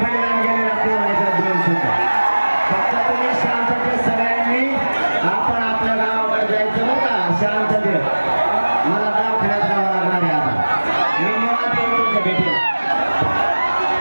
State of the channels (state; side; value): inverted; both; correlation -1.00